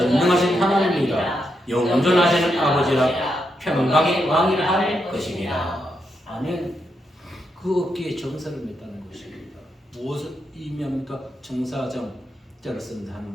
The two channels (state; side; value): normal; both; correlation 0.82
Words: 하나님이라 영존하시는 아버지라 평강의 왕이라 할 것입니다. 아멘. 그 어깨에 정사를 맸다는 것입니다. 무엇을 의미합니까? 정사정 자를 쓴